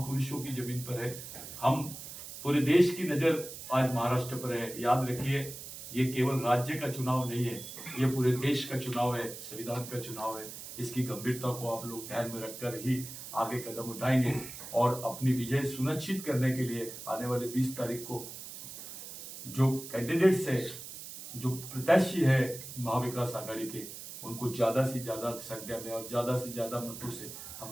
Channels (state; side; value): noise; right; hiss, 11 dB below the sound